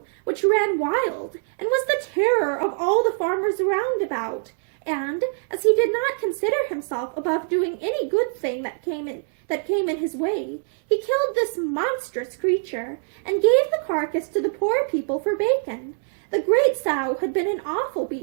which ran wild, and was the terror of all the farmers round about, and, as he did not consider himself above doing any good thing that came in his way, he killed this monstrous creature, and gave the carcass to the poor people for bacon. The great sow had been an awful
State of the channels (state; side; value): silent; left; digital silence